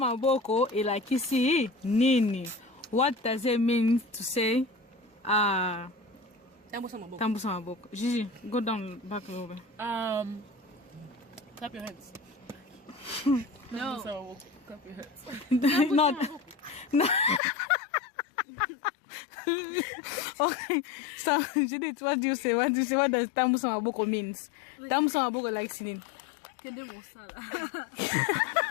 ilakisi nini? What does it mean to say tambusa maboko? Gigi, go down back a little bit. Clap your hands. No. Clap your hands. Not. No. Okay, so Judith, what do you say? What does tambusa maboko means? Tambusa maboko like sinin. Kende mosala.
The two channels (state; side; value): drops out; right; at 17.4 s